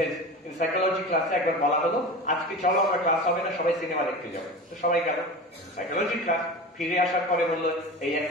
in psychology ক্লাসে একবার বলা হলো আজকে চলো আমরা ক্লাস হবে না, সবাই সিনেমা দেখতে যাবো। তো সবাই গেল সাইকোলজি ক্লাস। ফিরে আসার পরে বললো এই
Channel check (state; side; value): normal; both; correlation 0.31